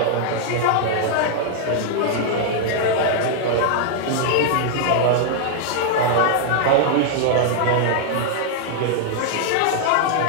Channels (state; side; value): different; both; correlation -0.01